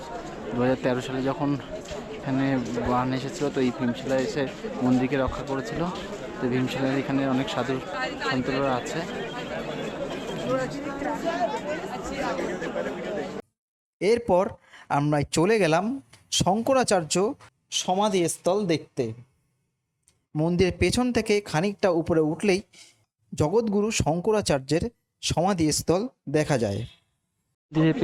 2013 সালে যখন এখানে বান এসেছিলো, তো এই ভীমশিলা এসে মন্দিরকে রক্ষা করেছিল। তো ভীমশিলার এখানে অনেক সাধু সন্তরা আছে। এরপর আমরা চলে গেলাম শঙ্করাচার্য সমাধিস্থল দেখতে। মন্দিরের পেছন থেকে খানিকটা উপরে উঠলেই জগৎগুরু শঙ্করাচার্যের সমাধিস্থল দেখা যায়।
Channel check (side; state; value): both; identical; correlation 1.00